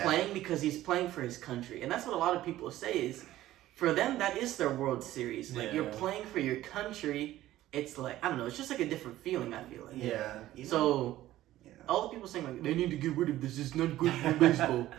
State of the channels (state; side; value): quieter; left; 14.7 dB